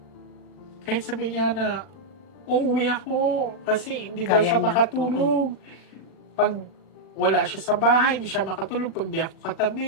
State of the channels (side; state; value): right; late; 39 ms